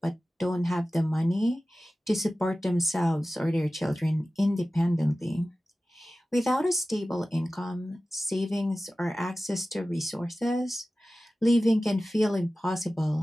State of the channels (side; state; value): both; normal; correlation 0.96